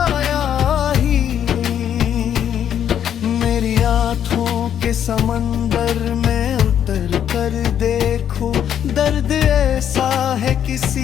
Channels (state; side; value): quieter; right; 9.5 dB